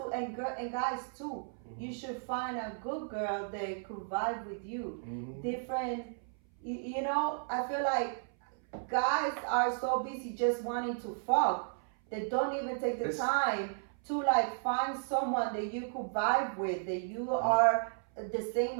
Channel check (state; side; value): silent; left; 55 dB below the other